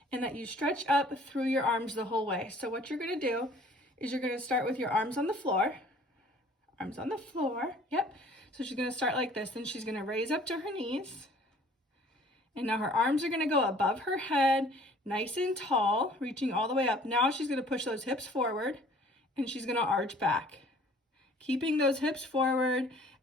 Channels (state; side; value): normal; both; correlation 0.53